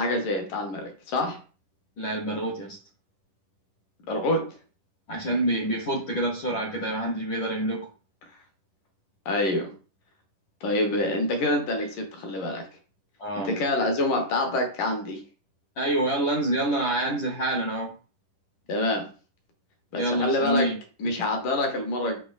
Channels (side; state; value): right; late; 10 ms